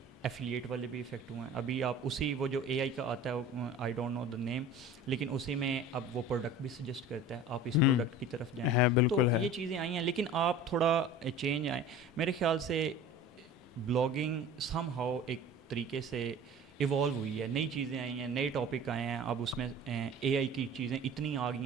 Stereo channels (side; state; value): both; normal; correlation 0.40